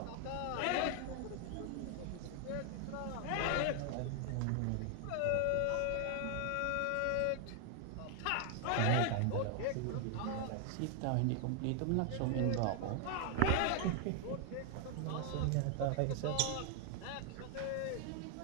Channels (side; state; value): both; different; correlation 0.00